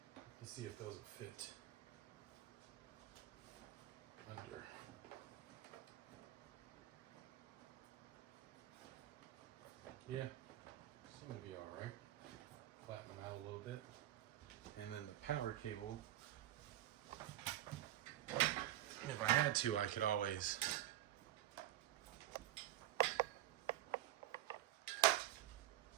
Let's see if those will fit under. Yeah, seem to be all right. Flatten them out a little bit. And then the power cable, if I had to, I could always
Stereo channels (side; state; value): left; quieter; 13.7 dB